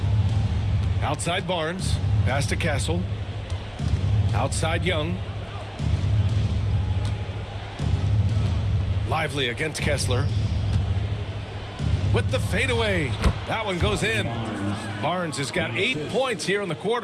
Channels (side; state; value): both; identical; correlation 1.00